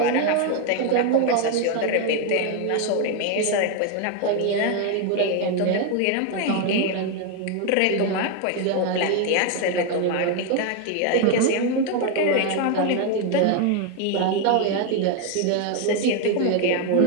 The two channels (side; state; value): both; different; correlation 0.01